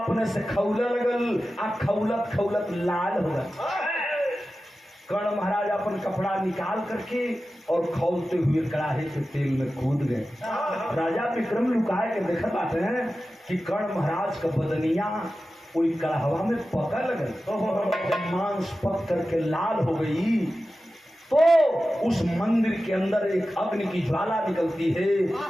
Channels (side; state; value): both; normal; correlation 0.94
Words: से खौले लगल आ खौलत खौलत लाल हो गल। कर्ण महाराज अपन कपड़ा निकाल करके और खौलते हुए कड़ाहे के तेल में कूद गए। राजा विक्रम लुकाए के देखत बाटे हैं कि कर्ण महाराज का बदनिया कोई कड़ाहवा में पका लगल। जब मांस पक करके लाल हो गई तो उस मंदिर के अंदर एक अग्नि की ज्वाला निकलती है।